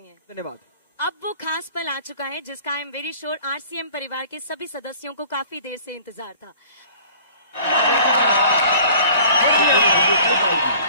हैं। धन्यवाद। अब वो खास पल आ चुका है जिसका I am very sure RCM परिवार के सभी सदस्यों को काफी देर से इंतजार था।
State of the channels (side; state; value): both; inverted; correlation -0.48